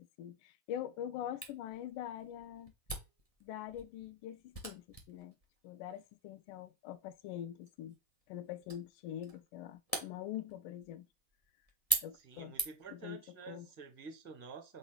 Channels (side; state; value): right; late; 1.7 ms